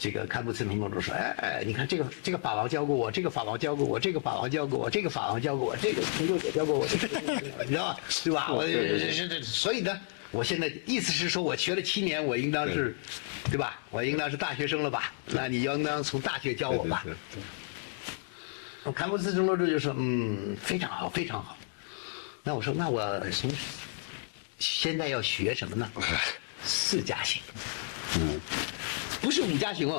这个堪布茨城罗柱说：“你看这个法王教过我，这个法王教过我，这个法王教过我，这个法王教过我，这个成就也教过我，你知道吧？对吧？所以呢，我现在意思是说，我学了7年，我应当是，对吧？我应当是大学生了吧？那你应当从大学教我吧？”堪布茨城罗柱就说：“非常好，非常好。”那我说：“那我现在要学什么呢？4加行。”不是5加行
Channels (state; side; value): silent; right; 57 dB below the other